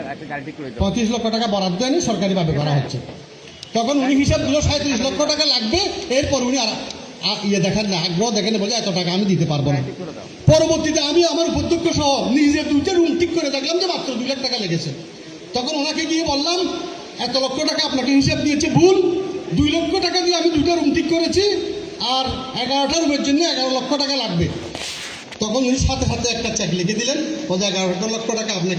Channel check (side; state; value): both; identical; correlation 1.00